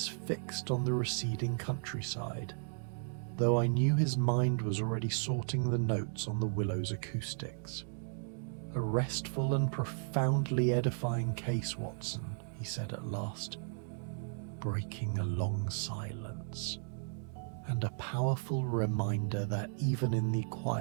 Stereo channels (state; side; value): silent; left; digital silence